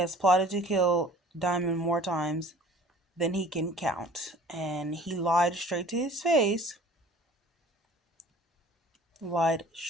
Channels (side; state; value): both; normal; correlation 0.49